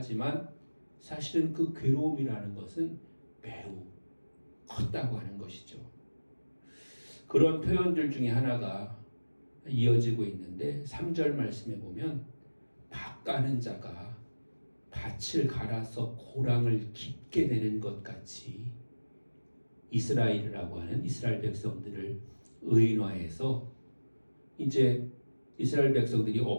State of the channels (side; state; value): both; inverted; correlation -1.00